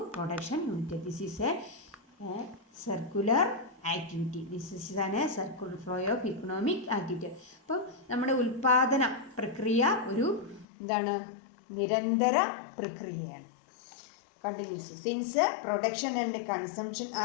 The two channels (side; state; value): right; drops out; at 10.7 s